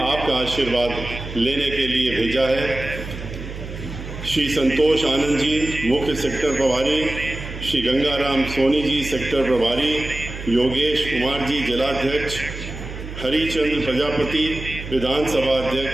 आपका आशीर्वाद लेने के लिए भेजा है। श्री संतोष आनंद जी मुख्य सेक्टर प्रभारी, श्री गंगाराम सोनी जी सेक्टर प्रभारी, योगेश कुमार जी जिलाध्यक्ष, हरिचंद्र प्रजापति विधानसभा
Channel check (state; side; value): noise; right; hum, 10 dB below the sound